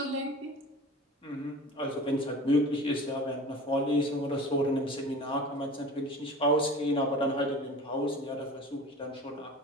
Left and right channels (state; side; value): normal; both; correlation 0.38